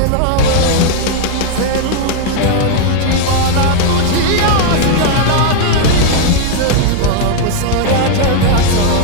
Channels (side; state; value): both; different; correlation 0.00